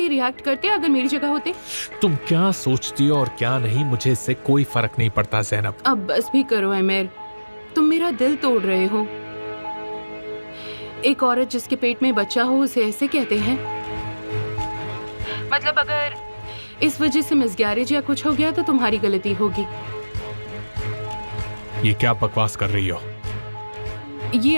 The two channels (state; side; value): inverted; both; correlation -1.00